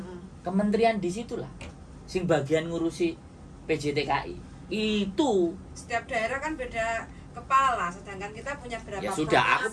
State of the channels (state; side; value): identical; both; correlation 1.00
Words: Kementerian di situlah. Sing bagian ngurusi PJTKI. Itu setiap daerah kan beda kepala, sedangkan kita punya berapa ya sudah, aku